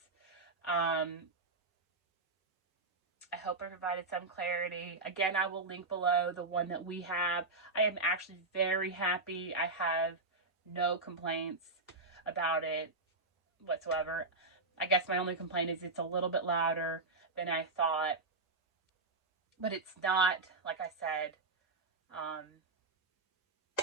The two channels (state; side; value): quieter; left; 3.4 dB